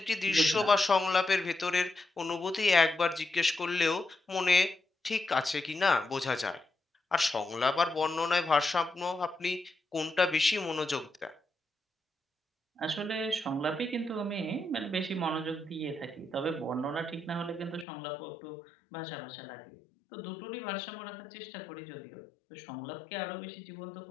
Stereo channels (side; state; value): right; drops out; at 17.9 s